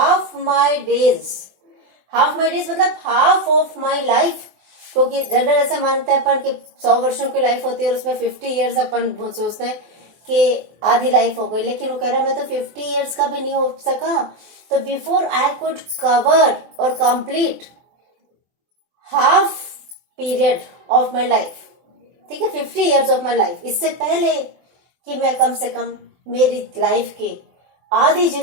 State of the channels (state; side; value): late; left; 24 ms